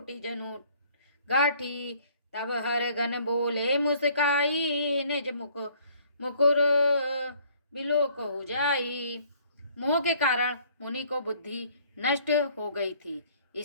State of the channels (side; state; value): both; inverted; correlation -0.59